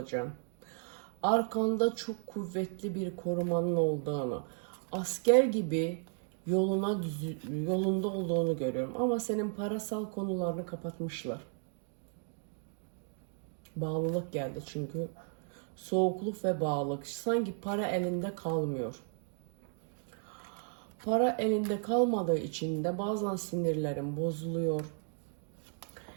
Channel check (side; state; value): left; silent; 55 dB below the other